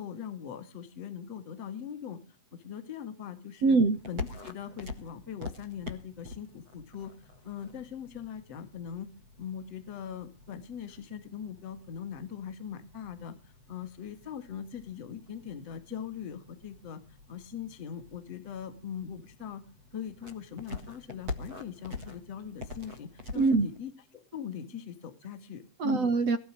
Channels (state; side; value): late; left; 7.9 ms